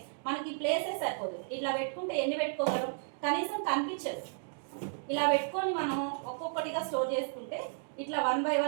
మనకి ప్లేసే సరిపోదు. ఇట్లా పెట్టుకుంటే ఎన్ని పెట్టుకోగలం? కనీసం కనిపించదు. ఇలా పెట్టుకొని మనం ఒక్కొక్కటిగా స్టోర్ చేసుకుంటే ఇట్లా 1 by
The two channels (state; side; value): silent; left; digital silence